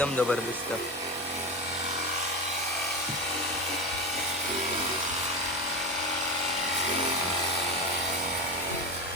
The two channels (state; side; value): normal; both; correlation 0.22